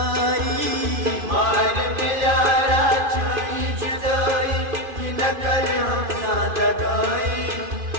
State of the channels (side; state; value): left; late; 2.5 ms